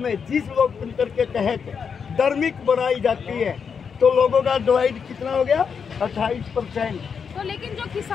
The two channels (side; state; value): right; quieter; 6.4 dB